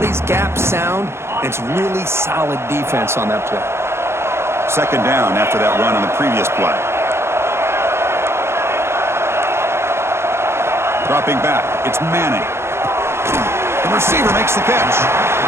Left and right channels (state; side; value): late; left; 0.12 ms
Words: gap sound. It's really solid defense on that play. Second down after that run on the previous play. Dropping back, it's Manning. The receiver makes the catch.